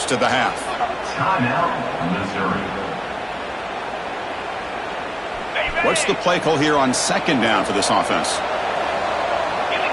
of the half. Timeout, Missouri. What's the play call here on 2nd down for this offense?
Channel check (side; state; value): both; identical; correlation 1.00